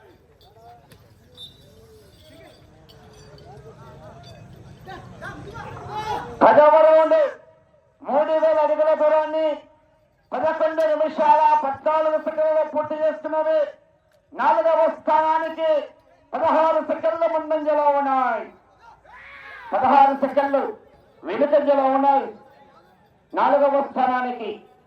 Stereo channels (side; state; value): both; identical; correlation 1.00